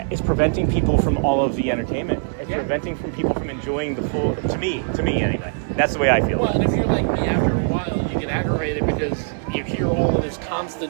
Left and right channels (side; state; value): left; silent; digital silence